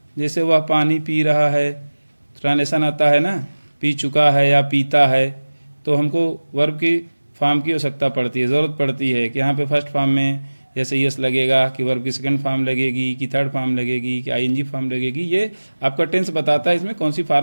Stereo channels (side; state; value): both; inverted; correlation -1.00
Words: जैसे वह पानी पी रहा है, ट्रांसलेशन आता है ना, पी चुका है या पीता है, तो हमको वर्ब की फॉर्म की आवश्यकता पड़ती है, ज़रूरत पड़ती है कि यहाँ पे फर्स्ट फॉर्म में जैसे यस लगेगा, कि वर्ब की सेकंड फॉर्म लगेगी, कि थर्ड फॉर्म लगेगी, कि आईएनजी फॉर्म लगेगी। ये आपका टेंस बताता है इसमें कौन सी